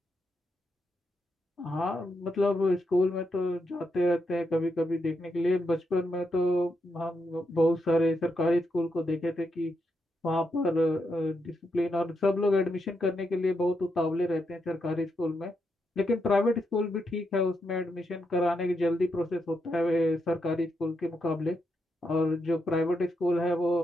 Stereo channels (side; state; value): both; normal; correlation 0.82